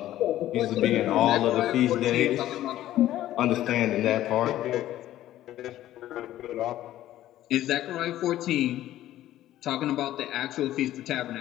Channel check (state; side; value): quieter; right; 13.6 dB